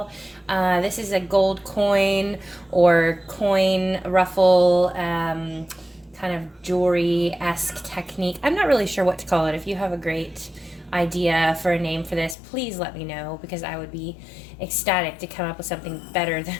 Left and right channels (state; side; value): drops out; right; at 12.4 s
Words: This is a gold coin or coin ruffle kind of jewelry-esque technique. I'm not really sure what to call it. If you have a great idea for a name for this, please let me know because I would be ecstatic to come up with something better than